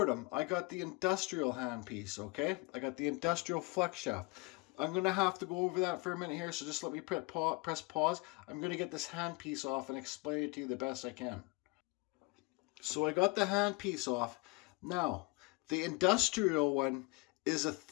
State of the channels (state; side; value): quieter; right; 27.5 dB